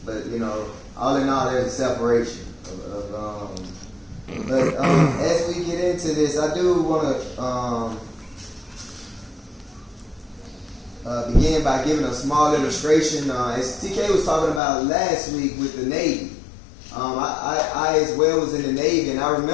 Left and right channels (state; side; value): drops out; right; at 14.6 s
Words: but you know, all in all, there's a separation. But as we get into this, I do want to begin by giving a small illustration. As TK was talking about last week with the Navy, I as well was in the Navy, and I